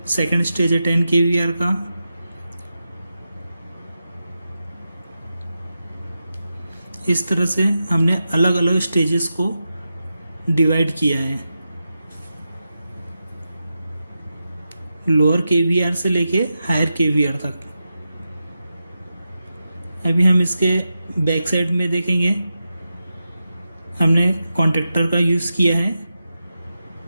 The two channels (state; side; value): inverted; both; correlation -0.90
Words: सेकंड स्टेज है 10 kVAR का। इस तरह से हमने अलग अलग स्टेजेस को डिवाइड किया है, लोअर kVAR से लेके हायर kVAR तक। अभी हम इसके बैक साइड में देखेंगे, हमने कॉन्टैक्टर का यूज़ किया है।